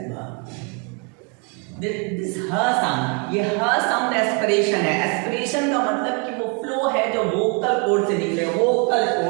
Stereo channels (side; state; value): left; quieter; 35.0 dB